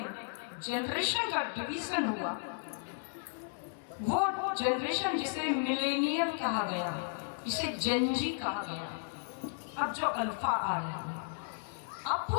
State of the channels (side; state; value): right; silent; digital silence